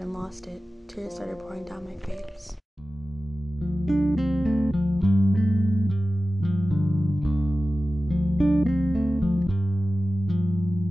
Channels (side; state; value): both; normal; correlation 0.95